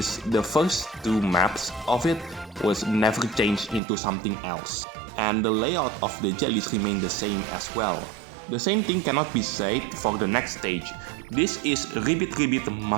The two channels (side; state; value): left; drops out; at 3.8 s